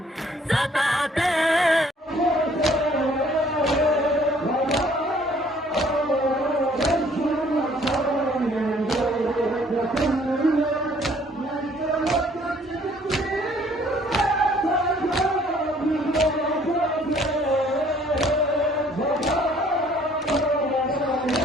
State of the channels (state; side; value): normal; both; correlation 0.59